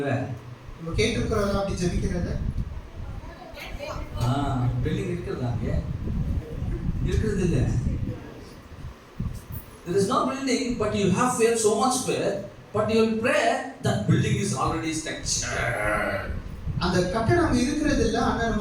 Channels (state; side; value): identical; both; correlation 1.00